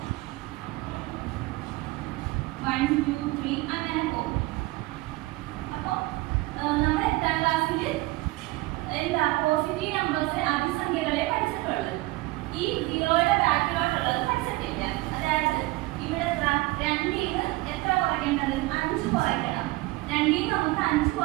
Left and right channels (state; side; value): quieter; left; 20.7 dB